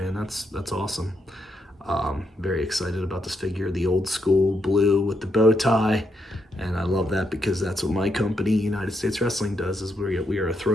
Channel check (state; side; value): normal; both; correlation 0.80